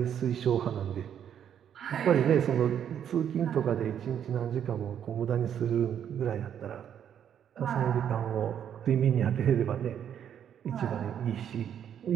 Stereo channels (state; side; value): quieter; left; 9.2 dB